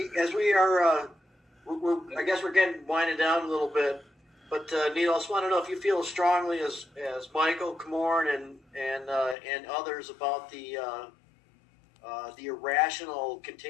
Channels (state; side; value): drops out; right; at 9.3 s